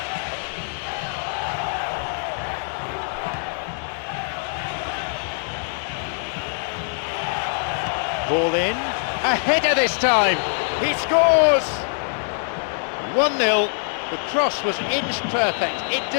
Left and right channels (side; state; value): right; silent; 61 dB below the other